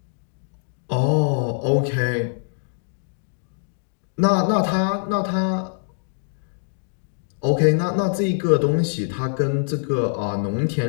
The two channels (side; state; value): right; silent; digital silence